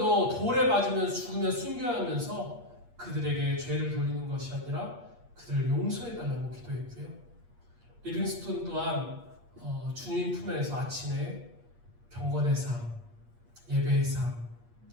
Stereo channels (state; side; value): late; left; 8.5 ms